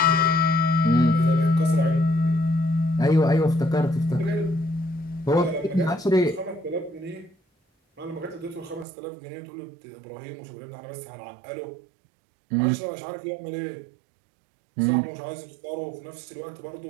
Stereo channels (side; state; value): left; drops out; at 8.8 s